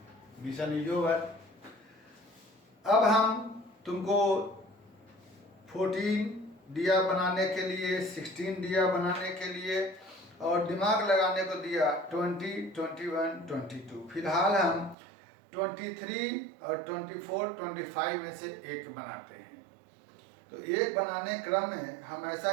Mission is over. अब हम तुमको 14 दिया बनाने के लिए, 16 दिया बनाने के लिए और दिमाग लगाने को दिया 20, 21, 22। फिलहाल हम 23 और 24, 25 में से एक बनाते हैं। तो एक बनाने क्रम में हम ऐसा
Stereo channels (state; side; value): drops out; left; at 15.0 s